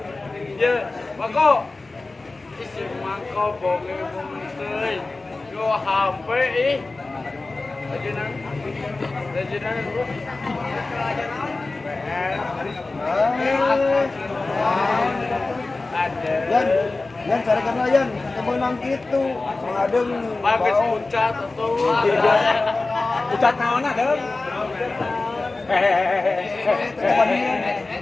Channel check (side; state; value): right; quieter; 3.4 dB